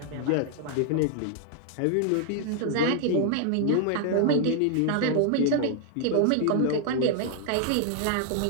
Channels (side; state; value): both; different; correlation 0.00